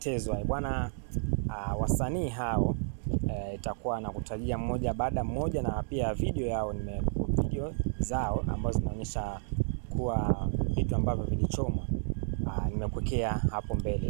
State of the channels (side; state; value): left; silent; 57 dB below the other